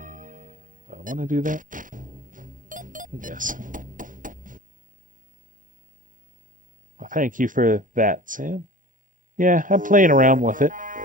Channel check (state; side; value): late; left; 0.38 ms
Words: Do I want to do that? Yes. Well, thank you for that, Sam. Yeah, I'm playing around with it.